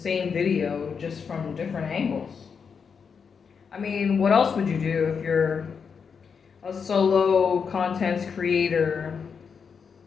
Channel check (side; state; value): right; quieter; 6.2 dB